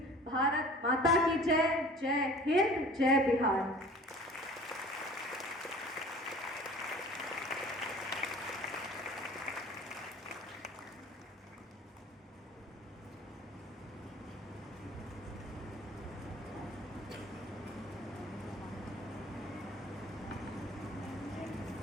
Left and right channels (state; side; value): normal; both; correlation 0.45